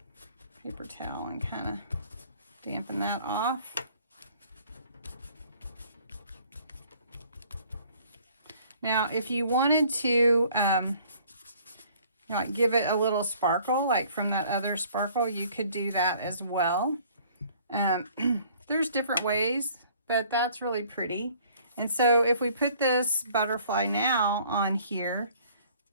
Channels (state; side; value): inverted; both; correlation -0.57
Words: paper towel, and kind of dampen that off. Now, if you wanted to like give it a little sparkle, like from that other sparkle, you could do that as well. There's different ways, but that's really pretty. And so if we put this butterfly now on here,